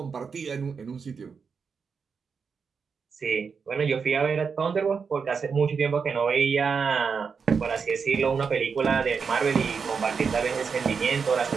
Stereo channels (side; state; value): left; quieter; 5.7 dB